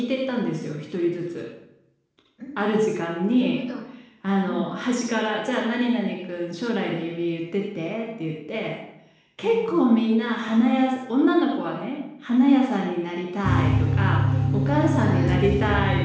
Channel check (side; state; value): both; identical; correlation 1.00